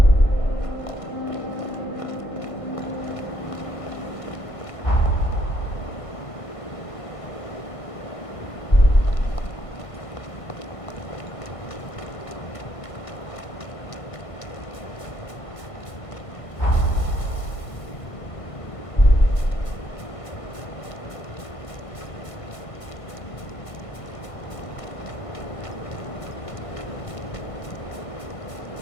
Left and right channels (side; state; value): right; late; 1.5 ms